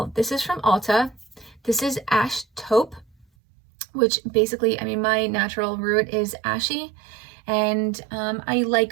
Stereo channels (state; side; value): drops out; left; at 3.2 s